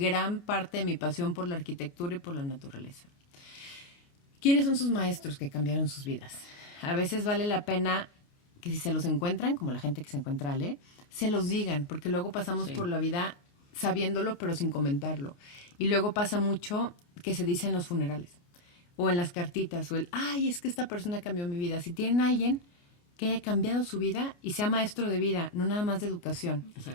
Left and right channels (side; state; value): right; late; 29 ms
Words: parte de mi pasión por la arquitectura y por la naturaleza. ¿Quiénes son sus maestros que cambiaron sus vidas? A veces vale la pena que si se los encuentran, como la gente que se encuentra a Ale, se los digan, porque luego pasamos por la vida sabiéndolo pero sin comentarlo. Y luego pasa mucho que se dice en los funerales o en las cartitas o es que esta persona cambió mi vida. Si tienen a alguien que haya cambiado su vida y sea maestro de vida, no nada más de educación,